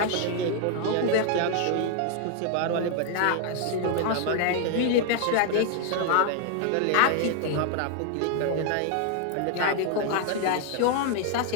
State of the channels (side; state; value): both; different; correlation 0.00